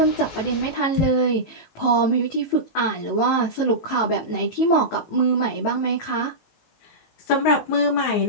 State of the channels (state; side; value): late; right; 18 ms